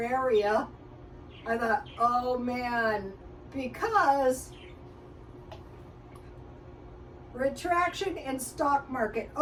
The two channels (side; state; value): both; identical; correlation 1.00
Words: area. I thought, oh man, because retraction in stock market.